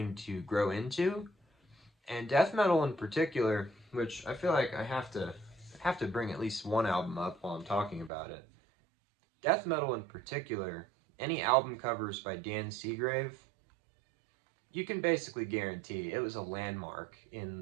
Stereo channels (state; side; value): drops out; left; at 8.1 s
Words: to grow into. And death metal in particular, which I feel like I have to bring at least one album up while I'm talking about it. Death metal in particular, any album covers by Dan Seagrave, you can basically guarantee it was a landmark in